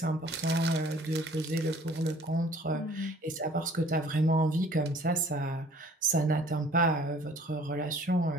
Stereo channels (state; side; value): normal; both; correlation 0.54